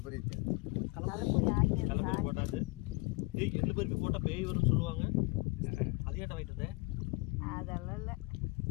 கலப்பரி போட்டாச்சு. எள்ளு பருப்பி போட்டால் பேய் வரும்னு சொல்லுவாங்க. அது ஏன்டா வாங்கிட்டு வந்தேன்? அதெல்லாம் இல்லை.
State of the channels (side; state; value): right; quieter; 25.0 dB